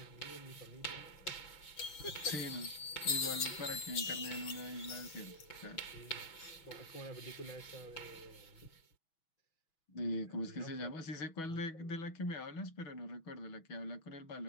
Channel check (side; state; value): right; late; 6.2 ms